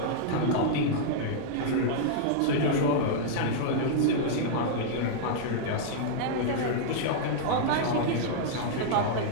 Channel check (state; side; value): different; both; correlation -0.01